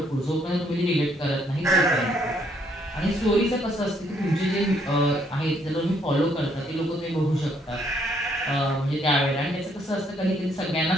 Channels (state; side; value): normal; both; correlation 0.69